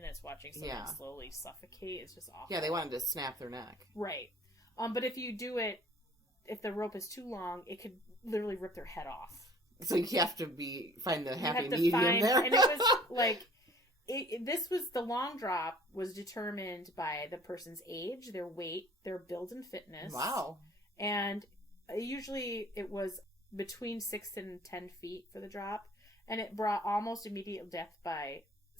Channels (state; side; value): normal; both; correlation 0.50